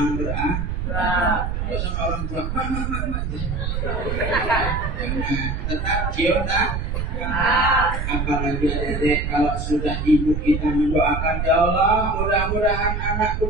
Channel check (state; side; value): noise; right; rumble, 2 dB below the sound